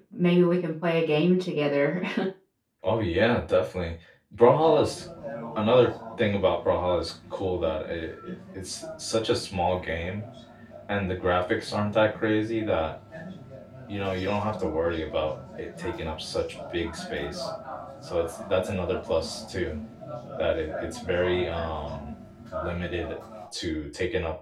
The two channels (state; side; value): identical; both; correlation 1.00